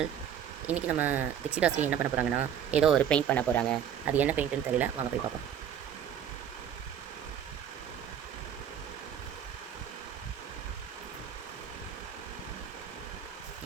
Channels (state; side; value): quieter; left; 9.2 dB